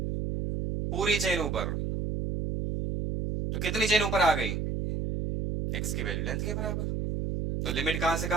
पूरी चेन ऊपर। तो कितनी चेन ऊपर आ गई, x की वैल्यू लेंथ के बराबर। तो लिमिट कहां से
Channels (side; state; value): right; noise; hum, 2 dB below the sound